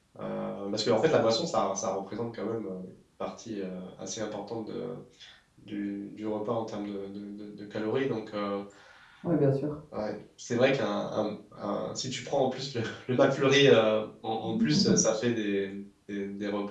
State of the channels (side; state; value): both; identical; correlation 1.00